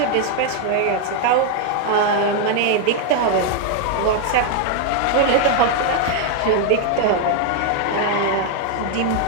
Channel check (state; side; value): different; both; correlation 0.00